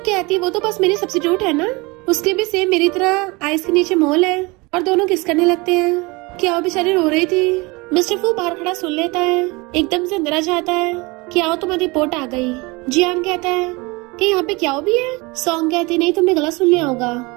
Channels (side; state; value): left; quieter; 25.2 dB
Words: कहती वो तो बस मेरी सब्स्टिट्यूट है ना, उसकी भी सेम मेरी तरह आइस के नीचे मोल है। और दोनों किस करने लगते हैं। क्या वो बेचारी रो रही थी। मिस्टर फू बाहर खड़ा सुन लेता है, एकदम से अंदर आ जाता है। क्या तुम्हारी रिपोर्ट आ गई? जियान कहता है कि यहाँ पे क्या भी है। सॉन्ग कहती नहीं, तुमने गलत सुन लिया होगा।